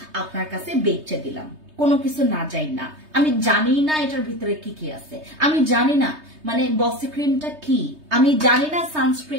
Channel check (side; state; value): left; late; 3.2 ms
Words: আপনার কাছে বেচে দিলাম, কোনো কিছু না যাই না। আমি জানি না এটার ভিতরে কি কি আছে, আমি জানি না মানে বসি ক্রিমটা কি, আমি জানি না